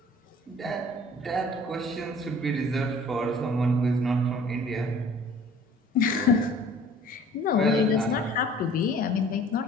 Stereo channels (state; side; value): normal; both; correlation 0.50